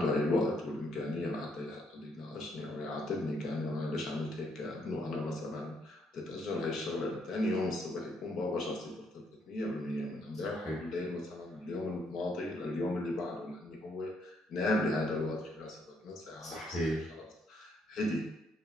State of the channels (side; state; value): both; normal; correlation 0.72